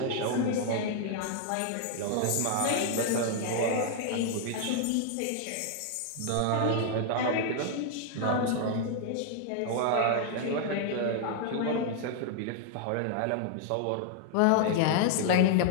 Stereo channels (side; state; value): both; different; correlation 0.00